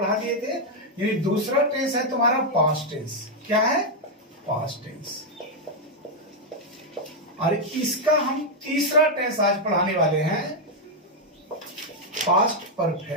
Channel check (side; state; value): both; normal; correlation 0.00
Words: दिए थे। यानी दूसरा टेंस है तुम्हारा पास्ट टेंस। क्या है? Past tense. और इसका हम तीसरा टेंस आज पढ़ाने वाले हैं, past